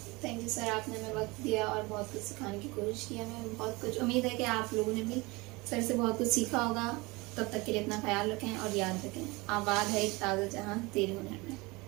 थैंक यू सर, आपने हमें वक्त दिया और बहुत कुछ सिखाने की कोशिश की। हमें बहुत कुछ उम्मीद है कि आप लोगों ने भी सर से बहुत कुछ सीखा होगा। तब तक के लिए अपना ख्याल रखें और याद रखें, आबाद है एक ताज़ा जहां तेरे हुनर में।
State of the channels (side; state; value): left; quieter; 24.4 dB